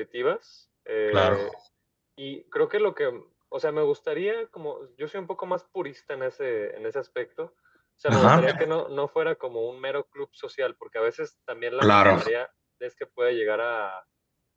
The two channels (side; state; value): both; identical; correlation 1.00